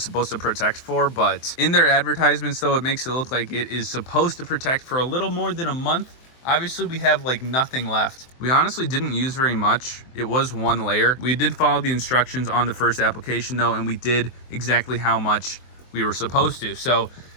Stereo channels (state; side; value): late; right; 23 ms